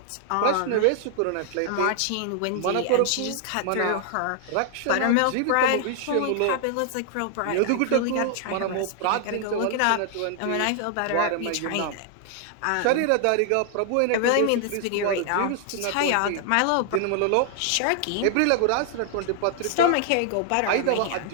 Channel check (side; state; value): both; different; correlation 0.00